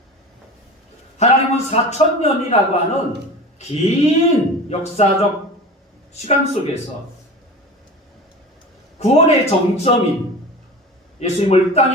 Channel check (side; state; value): both; normal; correlation 0.33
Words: 하나님은 4000년이라고 하는 긴 역사적 시간 속에서 구원의 정점인 예수님을